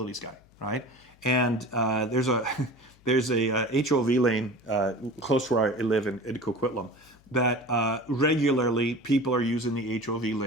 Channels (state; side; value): noise; left; hum, 29 dB below the sound